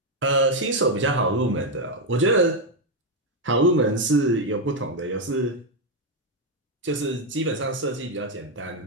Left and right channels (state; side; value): normal; both; correlation 0.03